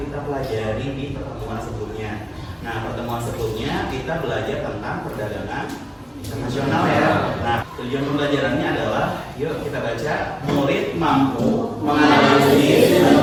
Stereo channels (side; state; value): both; identical; correlation 1.00